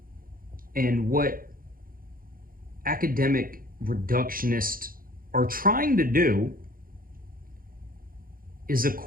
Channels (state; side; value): late; left; 0.41 ms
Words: And what academic reductionists are trying to do is